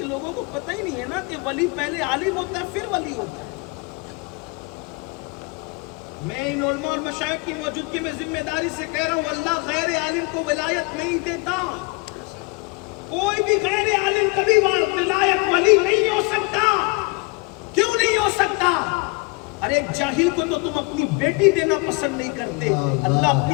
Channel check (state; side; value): quieter; right; 27.7 dB